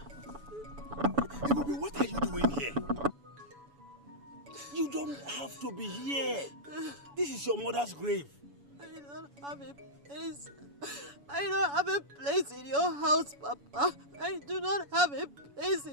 Ibubi, what are you doing here? You don't have to be here. This is your mother's grave. I don't have a place. I don't have a place in your house, Papa. I do not have a place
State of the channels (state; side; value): late; left; 7.0 ms